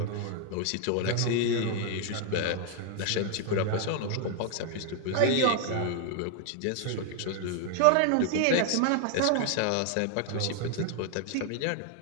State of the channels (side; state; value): both; different; correlation 0.00